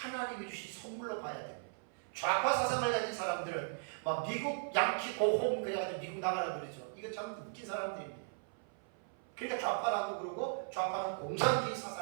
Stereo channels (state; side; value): silent; left; 53 dB below the other